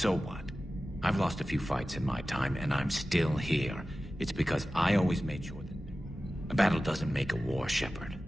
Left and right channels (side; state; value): both; normal; correlation 0.95